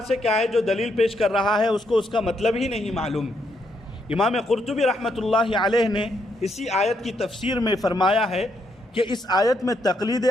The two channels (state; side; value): normal; both; correlation 0.76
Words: سے کیا ہے، جو دلیل پیش کر رہا ہے اس کو اس کا مطلب ہی نہیں معلوم۔ امام قرطبی رحمۃ اللہ علیہ نے اسی آیت کی تفسیر میں فرمایا ہے کہ اس آیت میں تقلید